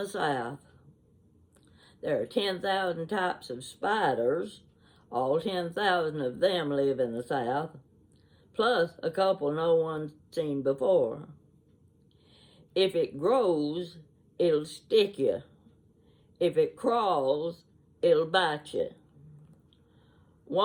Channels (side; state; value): both; identical; correlation 1.00